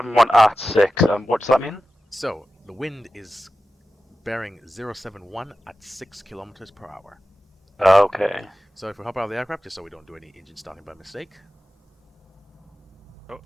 at 6. What does that mean? So, the wind is bearing 071 at 6 kilometers per hour. Okay. So if we hop out of the aircraft, just so we don't do any engine starting by mistake. Oh.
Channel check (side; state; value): both; normal; correlation 0.93